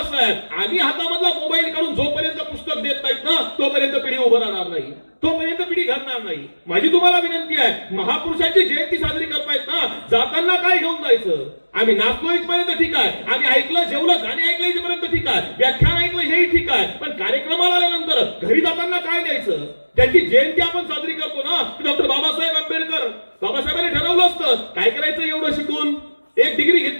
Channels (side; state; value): both; inverted; correlation -1.00